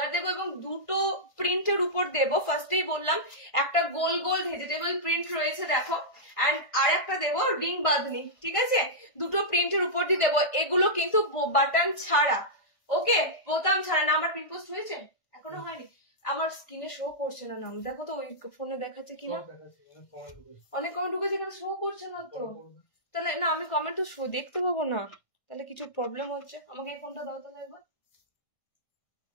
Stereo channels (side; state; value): right; late; 1.5 ms